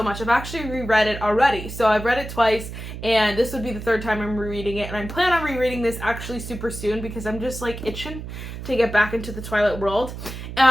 much. I've actually reread it already. So I've read it twice, and this would be the third time I'm rereading it. And I'm planning on rereading this actually super soon because I'm just like itching to get back into the Twilight world.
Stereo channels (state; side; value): noise; right; hum, 9 dB below the sound